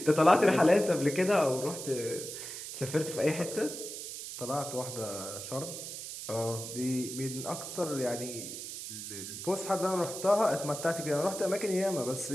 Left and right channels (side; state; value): right; noise; hiss, 8 dB below the sound